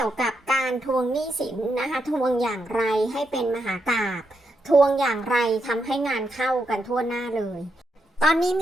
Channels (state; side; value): normal; both; correlation 0.82